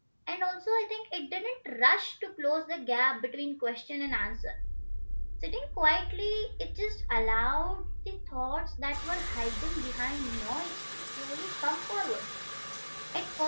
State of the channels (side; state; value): both; inverted; correlation -1.00